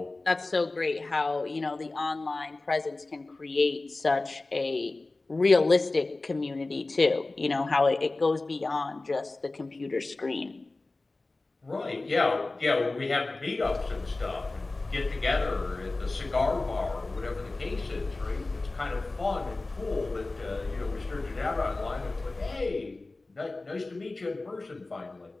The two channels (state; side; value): quieter; right; 3.2 dB